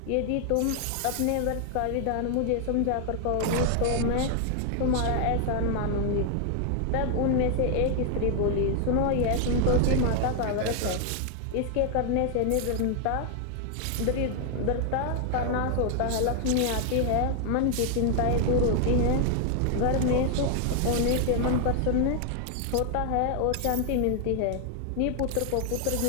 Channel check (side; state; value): both; different; correlation 0.00